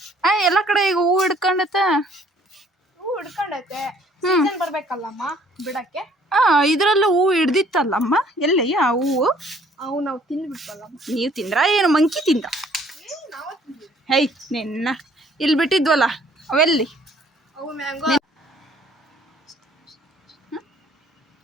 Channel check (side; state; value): both; normal; correlation 0.59